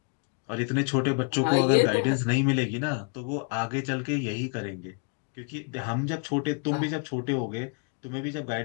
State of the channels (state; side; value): quieter; right; 38.1 dB